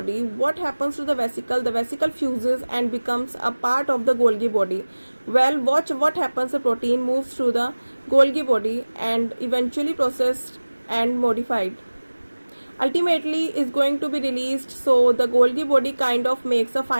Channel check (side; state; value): both; inverted; correlation -1.00